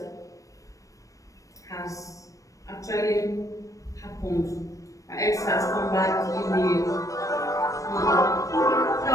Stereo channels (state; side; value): late; right; 0.16 ms